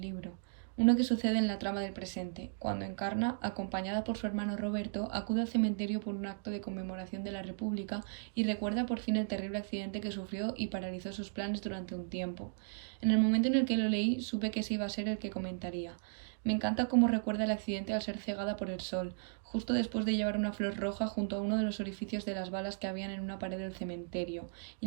libro, uno que sucede en la trama del presente, cuando Encarna, acompañada por su hermano Roberto, acude al cementerio por un acto de conmemoración de la República y recuerda por fin el terrible accidente que sufrió y paralizó sus planes durante un tiempo. En el momento en el que lo leí, supe que ese iba a ser el que comentaría. Me encanta cómo recuerda el accidente al ser cegada por el sol, justo después de llevar una flor roja junto a uno de los orificios de las balas que habían en una pared del cementerio,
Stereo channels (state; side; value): silent; left; digital silence